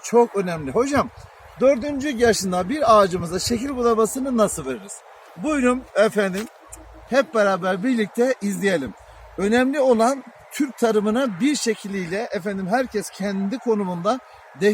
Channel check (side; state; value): both; identical; correlation 1.00